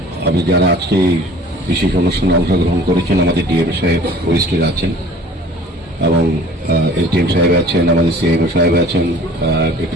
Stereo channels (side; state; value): both; normal; correlation 0.48